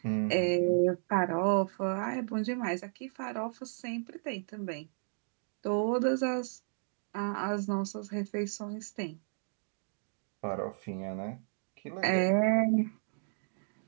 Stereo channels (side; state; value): left; silent; digital silence